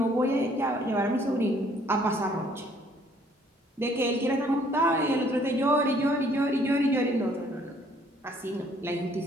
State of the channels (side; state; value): both; normal; correlation 0.62